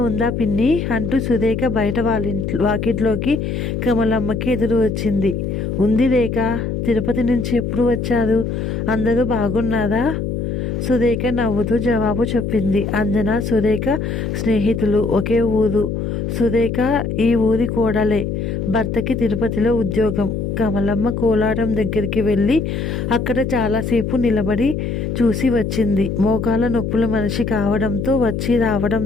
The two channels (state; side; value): noise; left; hum, 2 dB below the sound